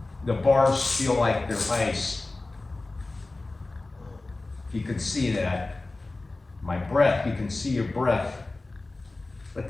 The bars feel like they're ice. You can see that. My breath, you can see your breath. But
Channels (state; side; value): quieter; right; 3.2 dB